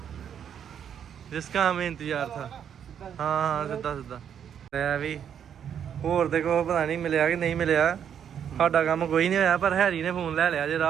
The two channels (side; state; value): left; quieter; 8.6 dB